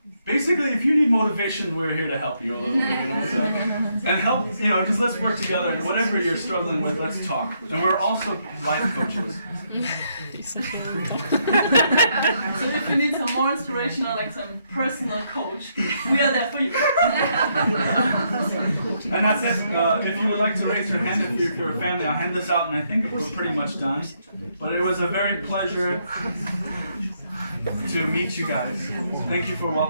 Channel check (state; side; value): inverted; both; correlation -0.75